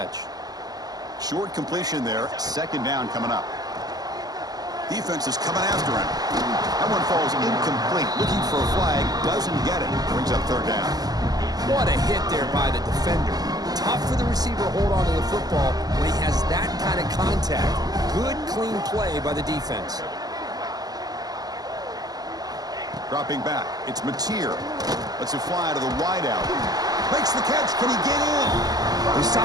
Short completion there. 2nd down coming up. Defense is coming after him. That one falls incomplete. Looking for a flag. Doesn't get it. Brings up 3rd down. What a hit there by the defender. Tough for the receiver to hold on to the football when he has that kind of contact. Good, clean play by the defense. Dropping back. It's Mateer. Lets it fly to the wideout. Makes the catch. Can he get in? They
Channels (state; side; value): late; left; 0.19 ms